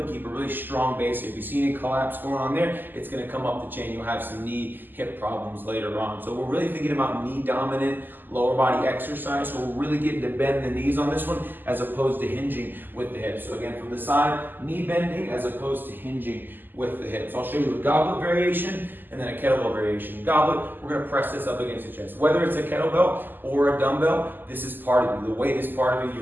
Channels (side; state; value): left; late; 0.090 ms